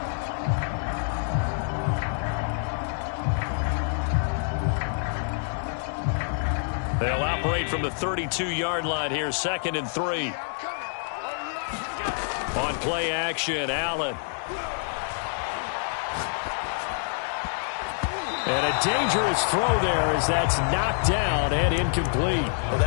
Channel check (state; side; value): silent; right; digital silence